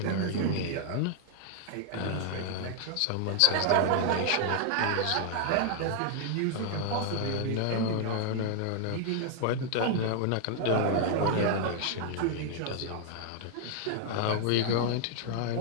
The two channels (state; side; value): different; both; correlation 0.00